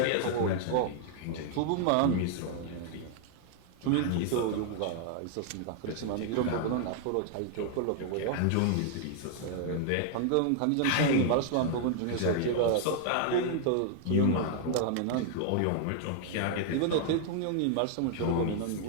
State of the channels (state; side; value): different; both; correlation 0.00